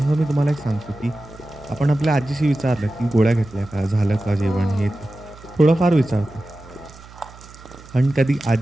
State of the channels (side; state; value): right; noise; hum, 20 dB below the sound